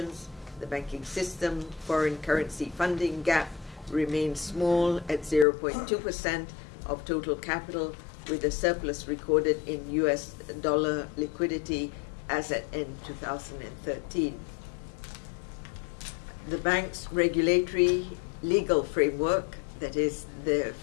The banking system foreign currency funding gap remains small at 0.2% of total capital, with a surplus recorded in US dollar liquidity as at end 2013. The bank's regulatory legal framework, that is the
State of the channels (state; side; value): drops out; right; at 5.5 s